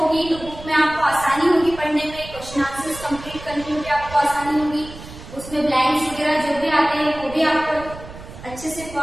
तो बुक में आपको आसानी होगी पढ़ने में, क्वेश्चन आंसर्स कंप्लीट करने में भी आपको आसानी होगी। उसमें ब्लैंक्स वगैरह जो भी आते हैं वो भी आपको अच्छे से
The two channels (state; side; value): noise; right; rumble, 15 dB below the sound